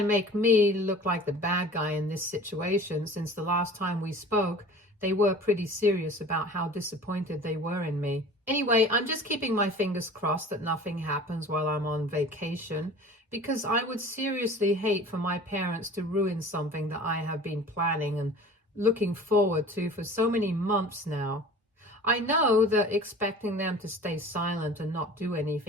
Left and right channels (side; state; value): both; normal; correlation 0.42